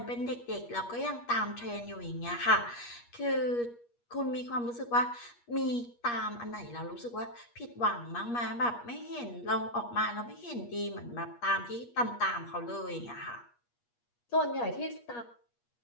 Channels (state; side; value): late; right; 8.4 ms